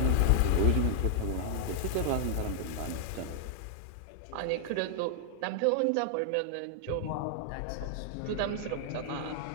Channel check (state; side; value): different; both; correlation -0.01